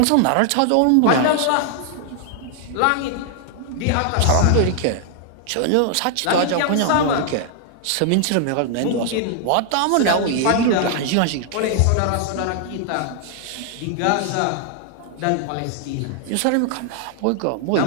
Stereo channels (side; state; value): both; different; correlation 0.00